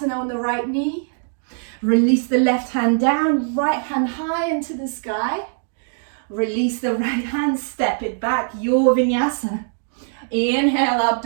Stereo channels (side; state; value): left; silent; digital silence